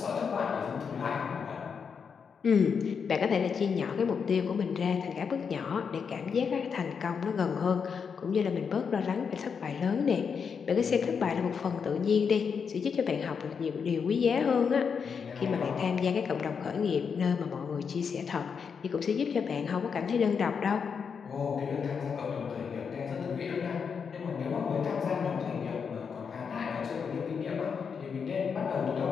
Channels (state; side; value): quieter; right; 6.3 dB